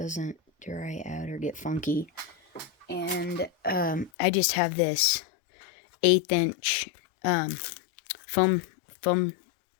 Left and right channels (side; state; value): right; drops out; at 4.1 s